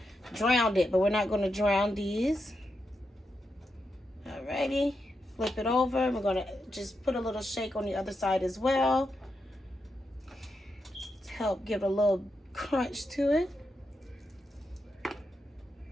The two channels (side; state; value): both; normal; correlation 0.85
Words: drown it, but we're not going to drown these. Alrighty, flip it over. We're going to just put a little shake on the other side as well to help give a little crunch to it.